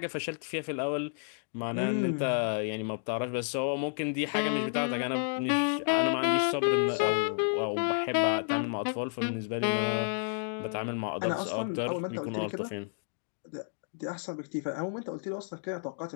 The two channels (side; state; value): right; silent; digital silence